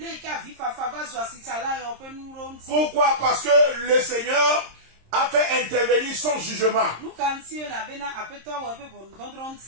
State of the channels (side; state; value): left; late; 26 ms